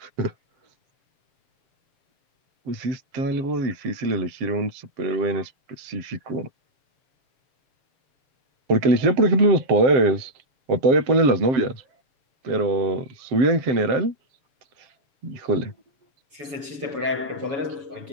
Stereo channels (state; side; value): late; left; 7.1 ms